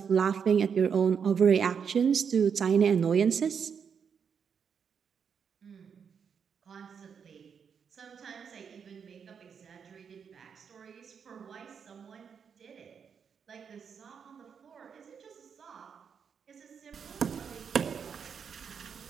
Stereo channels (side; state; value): left; quieter; 6.8 dB